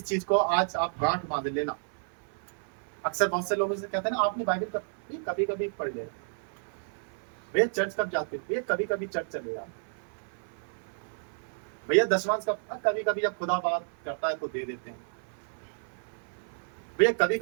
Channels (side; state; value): left; silent; 57 dB below the other